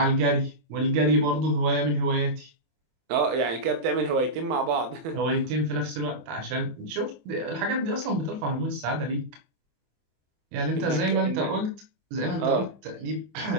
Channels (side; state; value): left; late; 24 ms